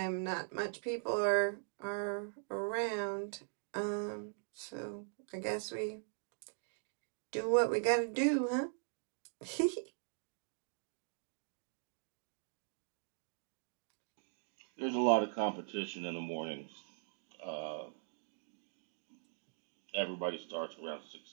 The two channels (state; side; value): silent; left; digital silence